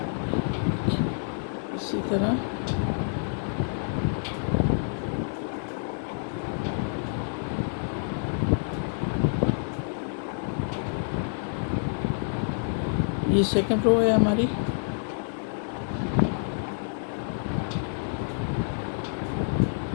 इसी तरह। ये सेकंड रो है हमारी।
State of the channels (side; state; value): right; silent; 56 dB below the other